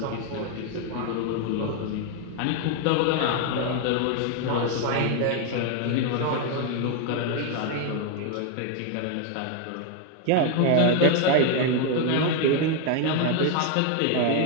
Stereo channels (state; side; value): different; both; correlation 0.01